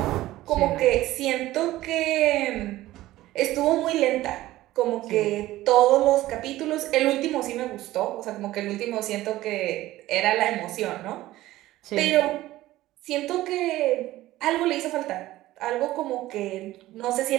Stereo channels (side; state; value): left; quieter; 16.1 dB